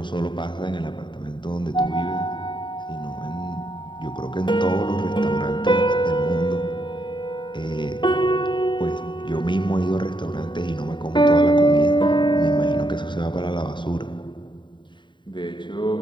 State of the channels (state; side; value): late; right; 0.23 ms